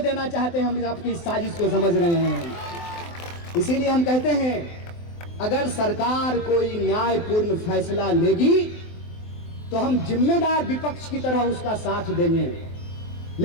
चाहते हैं। हम आपकी साजिश को समझ रहे हैं। इसीलिए हम कहते हैं, अगर सरकार कोई न्यायपूर्ण फैसला लेगी तो हम जिम्मेदार विपक्ष की तरह उसका साथ देंगे।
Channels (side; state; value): right; late; 23 ms